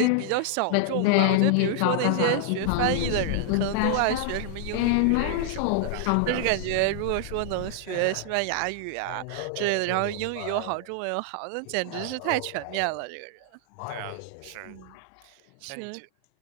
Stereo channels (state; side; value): different; both; correlation -0.01